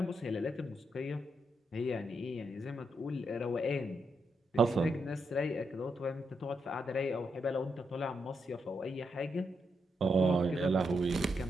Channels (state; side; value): normal; both; correlation 0.81